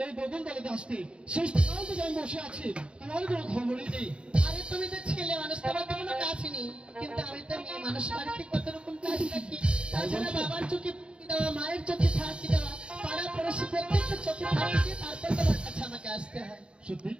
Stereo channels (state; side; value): late; left; 0.056 ms